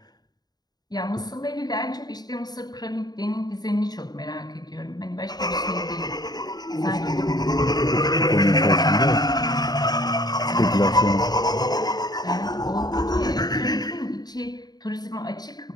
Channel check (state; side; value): late; right; 0.19 ms